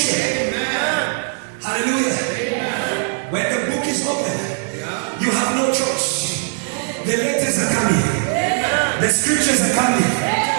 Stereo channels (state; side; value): silent; left; 59 dB below the other